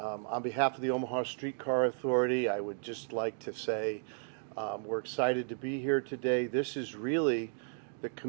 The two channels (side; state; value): left; silent; digital silence